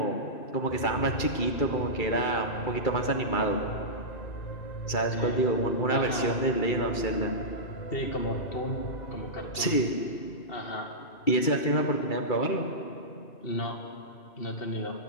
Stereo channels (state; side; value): late; right; 2.3 ms